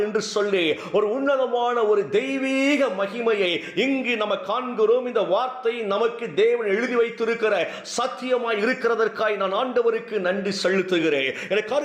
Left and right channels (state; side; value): identical; both; correlation 1.00